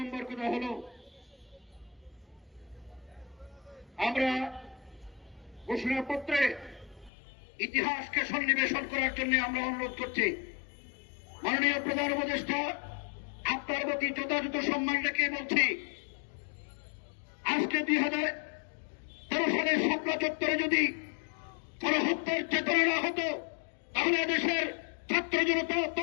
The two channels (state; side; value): drops out; right; at 7.1 s